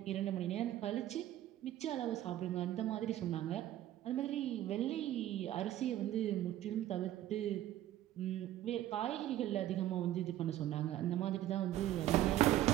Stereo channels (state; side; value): quieter; left; 13.3 dB